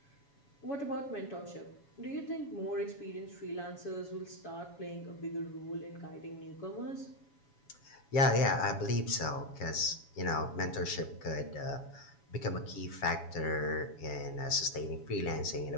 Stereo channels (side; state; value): right; late; 7.2 ms